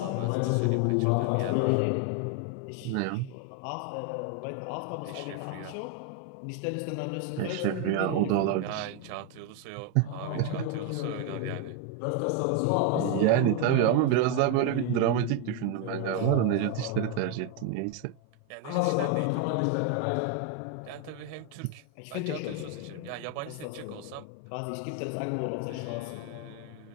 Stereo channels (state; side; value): different; both; correlation 0.01